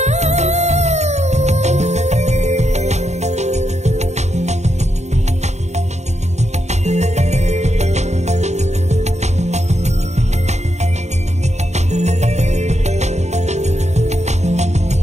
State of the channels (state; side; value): late; left; 0.33 ms